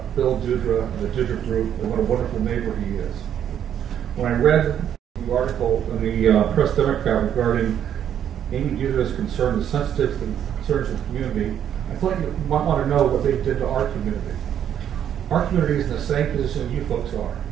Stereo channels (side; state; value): left; quieter; 9.6 dB